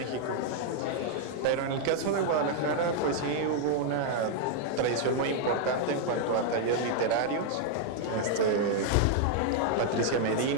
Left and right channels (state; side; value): different; both; correlation 0.00